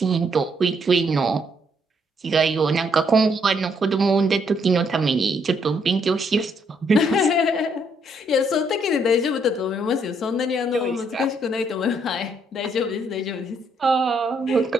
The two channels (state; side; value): normal; both; correlation 0.71